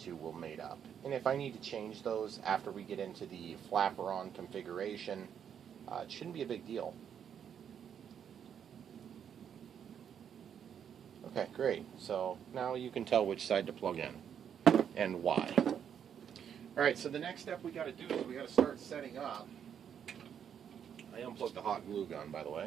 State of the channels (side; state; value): left; quieter; 8.4 dB